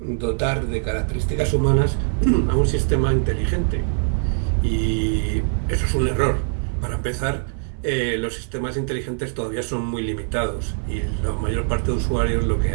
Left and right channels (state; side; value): silent; left; 64 dB below the other